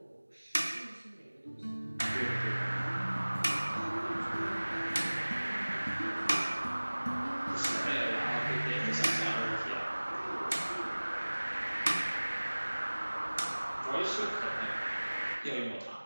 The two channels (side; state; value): both; inverted; correlation -1.00